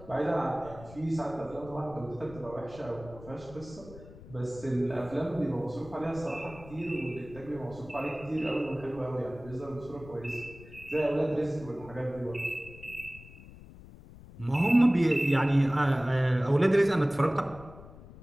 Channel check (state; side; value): noise; left; rumble, 18 dB below the sound